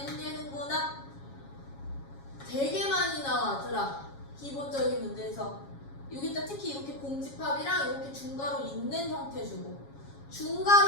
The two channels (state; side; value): late; right; 7.3 ms